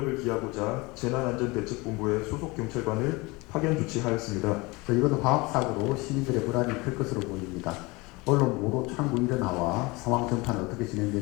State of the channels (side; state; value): right; quieter; 24.5 dB